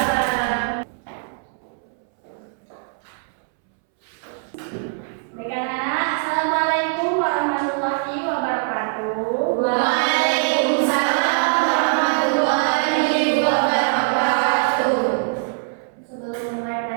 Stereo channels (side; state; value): left; silent; 64 dB below the other